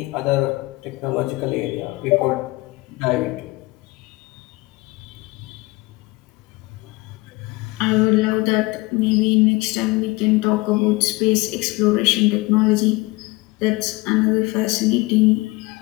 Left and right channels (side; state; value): right; quieter; 22.9 dB